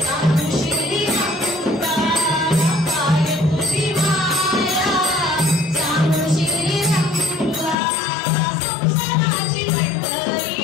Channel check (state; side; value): drops out; right; at 7.8 s